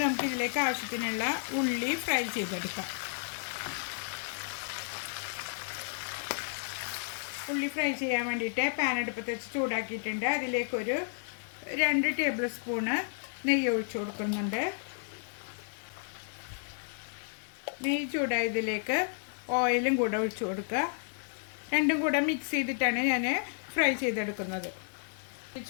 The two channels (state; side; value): silent; right; digital silence